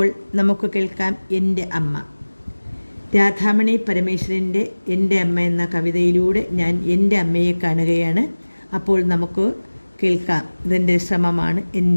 നമുക്ക് കേൾക്കാം എൻ്റെ അമ്മ. രാധാമണി പരമേശ്വരൻ്റെ എൻ്റെ അമ്മ എന്ന കവിതയിലൂടെ ഞാൻ എൻ്റെ അമ്മയെ കാണുകയാണ്. അപ്പോൾ നമുക്ക് കേൾക്കാം. ഇതെൻ്റെ ശ്രമമാണ്.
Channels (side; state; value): both; inverted; correlation -1.00